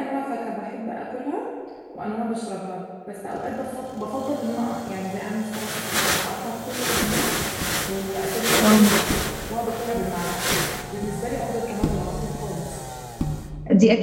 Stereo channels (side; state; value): both; identical; correlation 1.00